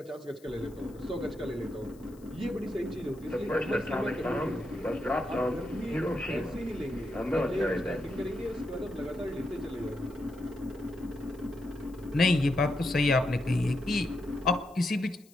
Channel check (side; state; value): left; noise; hiss, 28 dB below the sound